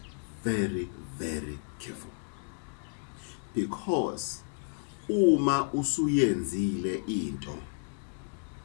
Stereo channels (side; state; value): right; silent; digital silence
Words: very careful. Because uma usuyenzile into,